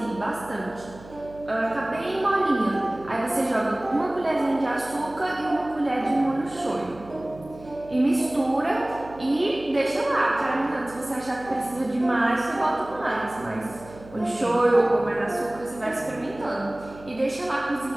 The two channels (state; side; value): noise; right; hum, 19 dB below the sound